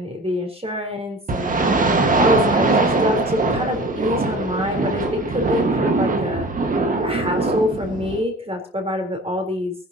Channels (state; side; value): normal; both; correlation 0.40